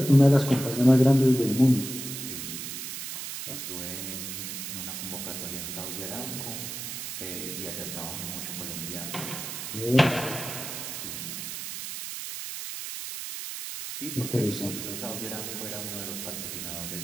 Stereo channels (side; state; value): right; noise; hiss, 6 dB below the sound